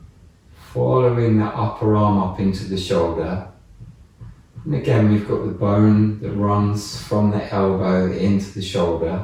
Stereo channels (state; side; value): identical; both; correlation 1.00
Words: following the upper arm up into the shoulder. And again, we've got the bone that runs from the elbow into the shoulder,